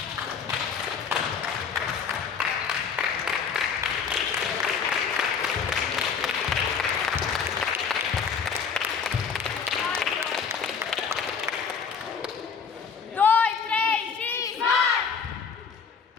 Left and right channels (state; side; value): quieter; right; 6.2 dB